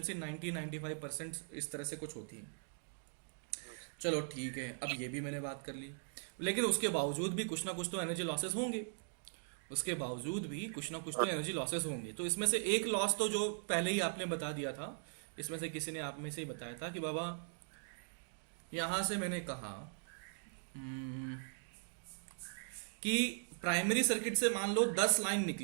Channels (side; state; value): left; silent; digital silence